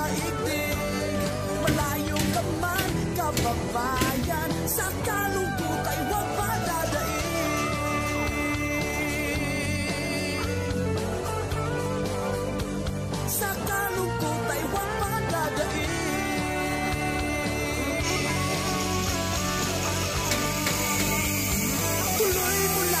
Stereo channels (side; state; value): both; identical; correlation 1.00